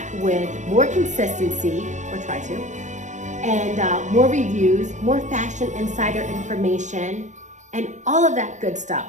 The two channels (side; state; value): left; late; 0.35 ms